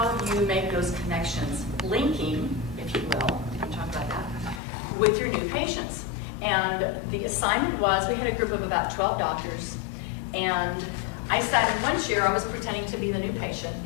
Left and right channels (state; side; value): drops out; right; at 4.6 s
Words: you make those connections, linking, if you will, we can talk about that, with your new patients. And the assignment was, we had a group of about 12 doctors, and I sat in one chair, I was pretending to be the new patient,